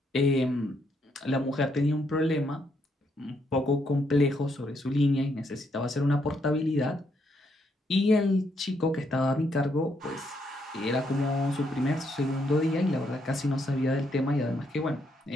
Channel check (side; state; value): both; normal; correlation 0.75